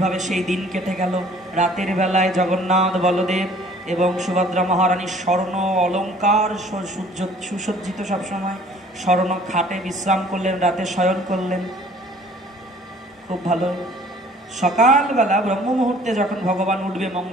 সেই দিন কেটে গেল। রাতের বেলায় জগন্নাথ বলদেব এবং সুভদ্রা মহারানীর স্বর্ণ অলঙ্কার সুসজ্জিত, সবসময় স্বর্ণ খাটে বিশ্রাম করলেন, রাতে শয়ন করলেন। খুব ভালো। সকালবেলা ব্রহ্ম মুহূর্তে যখন ভগবান উঠবে,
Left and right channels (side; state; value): both; normal; correlation 0.54